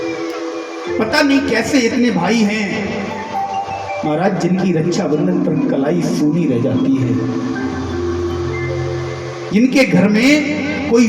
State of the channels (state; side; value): identical; both; correlation 1.00